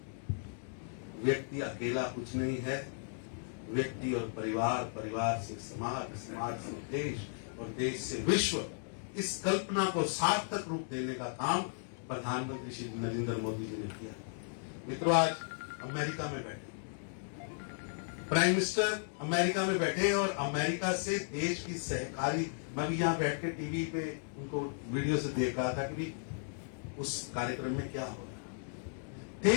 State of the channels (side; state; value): right; silent; digital silence